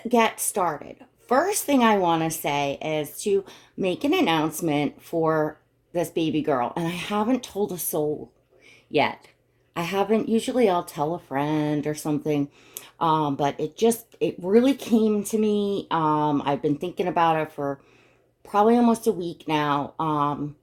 get started. First thing I want to say is to make an announcement for this baby girl. And I haven't told a soul yet. I haven't, usually I'll tell a friend or something. But it really came to me. I've been thinking about it for probably almost a week now.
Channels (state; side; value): identical; both; correlation 1.00